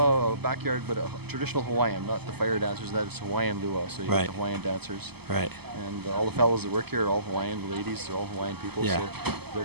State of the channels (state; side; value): late; left; 0.97 ms